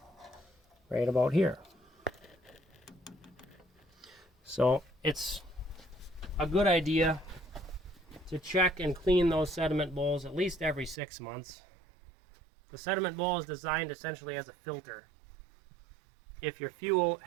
right about here. So it's a good idea to check and clean those sediment bowls at least every 6 months. The sediment bowl is designed essentially as a filter. If your fuel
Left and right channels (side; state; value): left; drops out; at 11.0 s